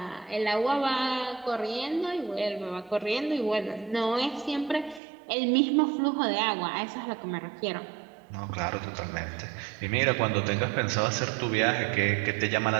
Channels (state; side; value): drops out; left; at 5.0 s